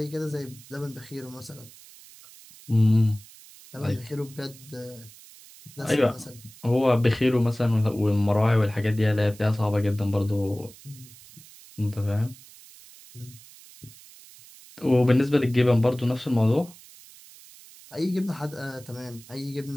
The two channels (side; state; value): right; noise; hiss, 21 dB below the sound